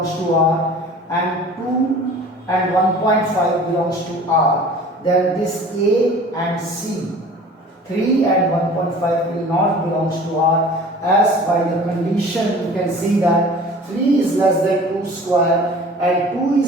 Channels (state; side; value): normal; both; correlation 0.44